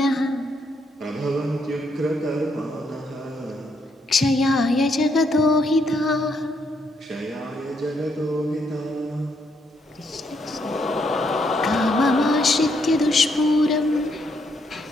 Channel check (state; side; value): normal; both; correlation 0.75